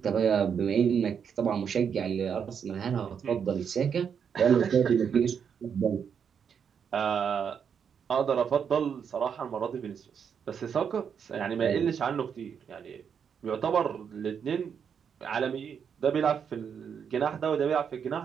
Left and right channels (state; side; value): quieter; left; 7.3 dB